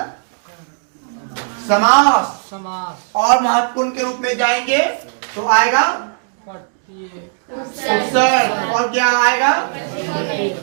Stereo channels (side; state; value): left; silent; digital silence